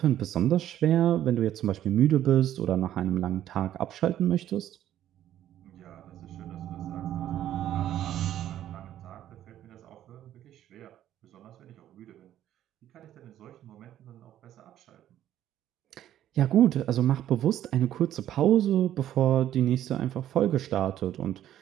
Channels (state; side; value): quieter; left; 11.9 dB